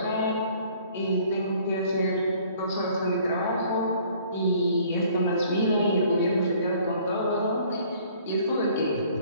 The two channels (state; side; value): inverted; both; correlation -0.56